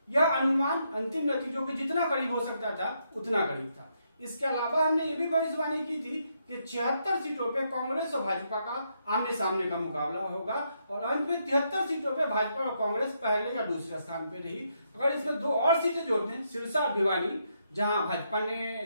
यह अनुमान अंतिम नतीजों के जितना करीब हो सकता था उतना करीब था। इसके अलावा हमने ये भी भविष्यवाणी की थी कि 76 सीटों पे कांग्रेस और भाजपा का आमने सामने का मुकाबला होगा और अंत में 73 सीटों पे भाजपा और कांग्रेस पहले या दूसरे स्थान पे रही। अगर इसमें 2 और सीटें जोड़ दें, सिरसा और भिवानी, जहां भाजपा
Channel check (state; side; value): inverted; both; correlation -0.78